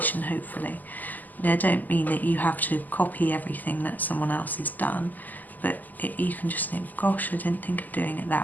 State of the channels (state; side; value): late; right; 0.083 ms